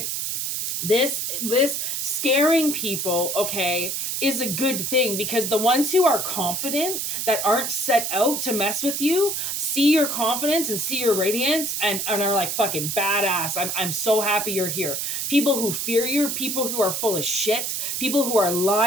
this scaring people, okay, is a good thing, because the ones who are confident, that aren't set out to mess with you, see your confidence and see your radiance and are like fucking badass. I'm so happy you're here. People who fear you, people who are full of shit, people who are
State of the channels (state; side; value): noise; right; hiss, 2 dB below the sound